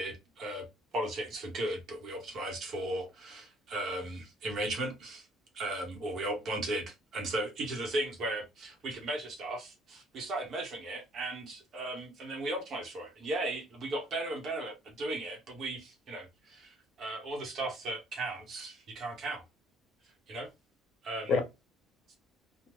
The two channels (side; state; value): both; normal; correlation 0.61